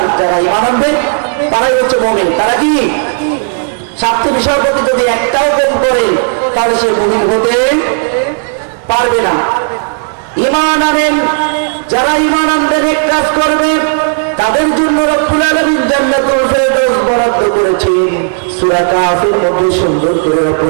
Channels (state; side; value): silent; left; digital silence